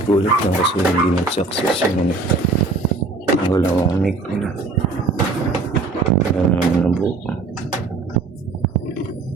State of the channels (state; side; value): quieter; left; 3.5 dB